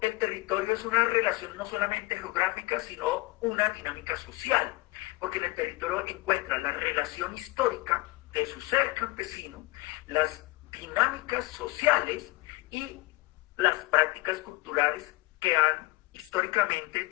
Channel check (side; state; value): right; quieter; 22.0 dB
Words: el territorio es una relación no solamente geográfica, sino una dinámica social, porque en el territorio encuentra la relación histórica de su ser campesino, las dinámicas sociales y las prácticas culturales que han históricamente